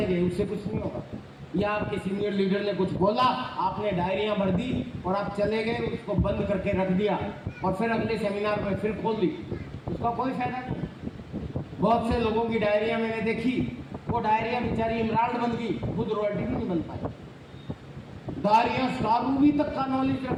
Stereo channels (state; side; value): identical; both; correlation 1.00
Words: गए, उससे कुछ नहीं होगा। या आपके सीनियर लीडर ने कुछ बोला, आपने डायरियां भर दी और आप चले गए, उसको बंद करके रख दिया और फिर अगले सेमिनार में फिर खोल दी, उसका कोई फायदा नहीं। बहुत से लोगों की डायरियां मैंने देखी, वो डायरियां बेचारी इमराल्ड बन गई, खुद रॉयल्टी भी नहीं बन पाई। डायरियां सारूबी तक का नॉलेज